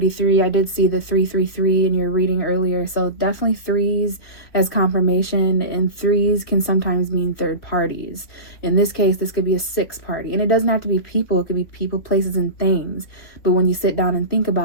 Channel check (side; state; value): right; late; 3.7 ms